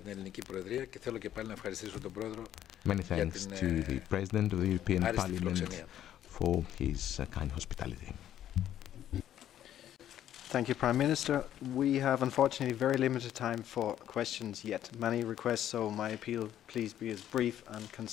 Many thanks to the President of the European Parliament for his kind hospitality. Thank you, Prime Minister. We have unfortunately very limited time for questions yet. Many requests, so my appeal, please be as brief and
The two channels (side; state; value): right; quieter; 11.3 dB